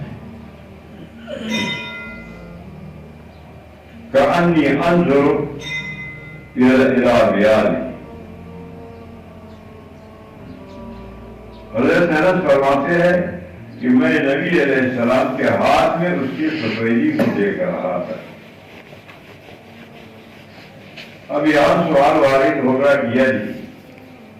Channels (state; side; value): identical; both; correlation 1.00